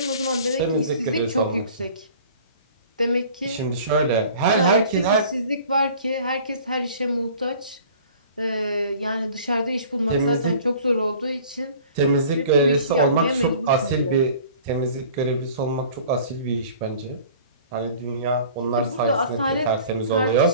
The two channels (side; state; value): both; inverted; correlation -0.47